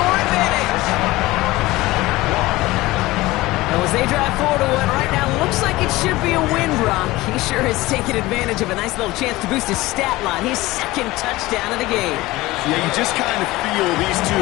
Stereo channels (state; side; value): quieter; right; 19.2 dB